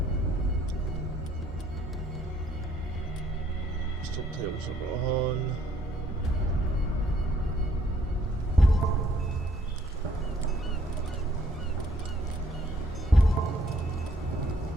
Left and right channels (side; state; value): both; normal; correlation 0.65